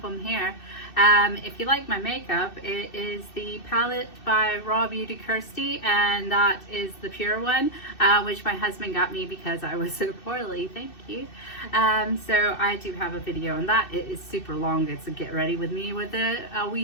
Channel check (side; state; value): right; late; 2.6 ms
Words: them here. If you like my makeup, it is the palette by Raw Beauty Kirsty, and that is the pure one, which my husband got me because I was so poorly. Thank you. So I do have a video on that. It is super long. It's a get ready with me with a